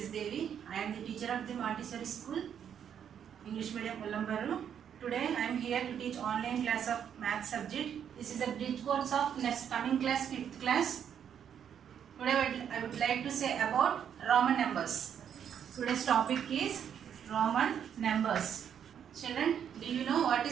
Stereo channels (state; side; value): quieter; left; 8.6 dB